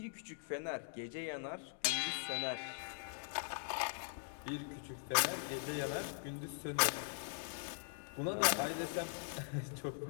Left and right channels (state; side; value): silent; right; digital silence